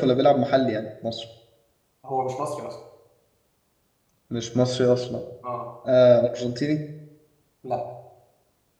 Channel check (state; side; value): identical; both; correlation 1.00